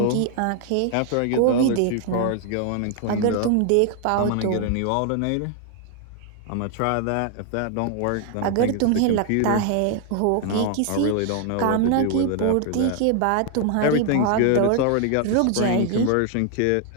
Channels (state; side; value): different; both; correlation 0.00